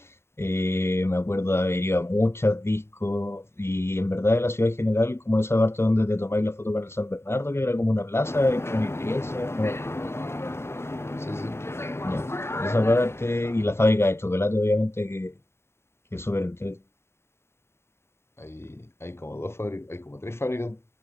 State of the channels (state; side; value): late; right; 0.12 ms